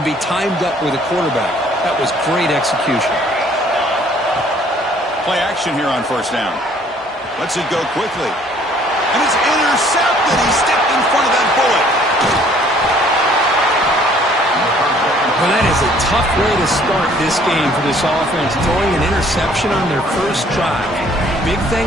be timed up with a quarterback. That was great execution. Play action here on first down. Lets it go quickly. And it's intercepted. He stepped in front of that bullet. Well, that is a tough way to start this game for this offense, throwing an interception on their first drive. Big thing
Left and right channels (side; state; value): both; normal; correlation 0.59